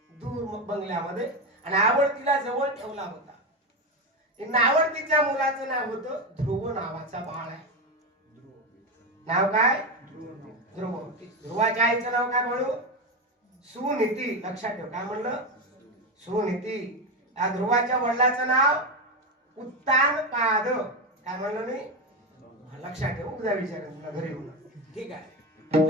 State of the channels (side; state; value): both; normal; correlation 0.14